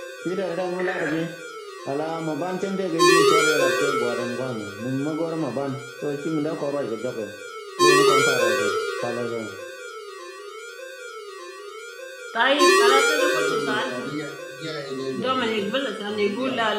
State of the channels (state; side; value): identical; both; correlation 1.00